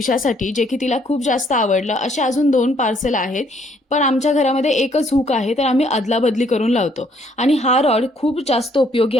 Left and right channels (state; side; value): normal; both; correlation 0.66